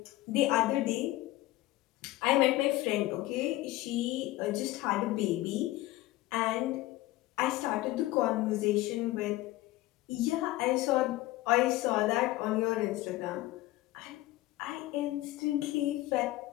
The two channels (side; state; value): right; quieter; 17.4 dB